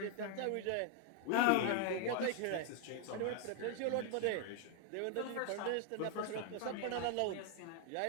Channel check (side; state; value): both; different; correlation 0.00